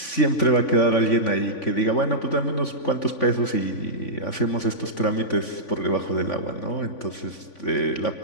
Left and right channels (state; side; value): late; right; 3.5 ms